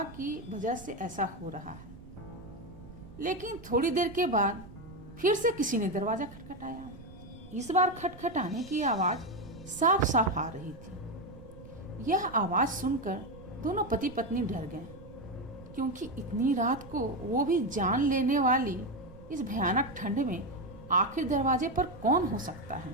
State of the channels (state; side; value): noise; right; rumble, 17 dB below the sound